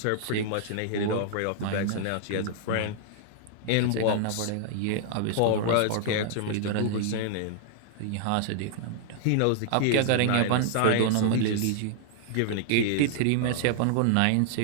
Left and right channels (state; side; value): different; both; correlation -0.01